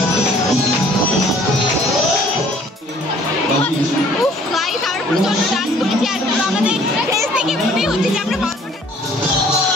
উফ গাইস, আমরা প্রচন্ড ডান্স করেছি আর আমাদের ফেস থেকে মনে হচ্ছে যে আমরা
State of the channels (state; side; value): normal; both; correlation 0.56